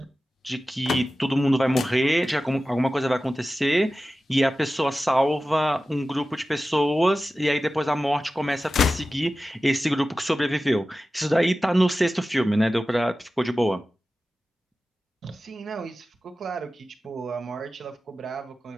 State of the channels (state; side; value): normal; both; correlation 0.94